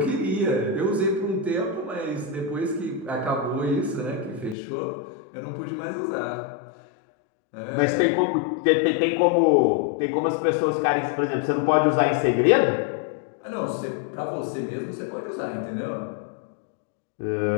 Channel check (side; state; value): right; drops out; at 4.5 s